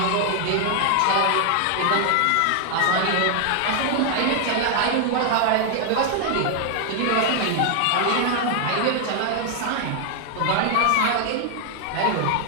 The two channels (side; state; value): both; different; correlation 0.00